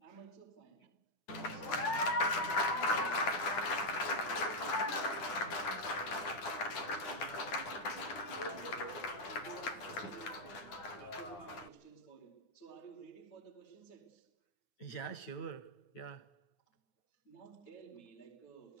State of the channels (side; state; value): right; late; 9.2 ms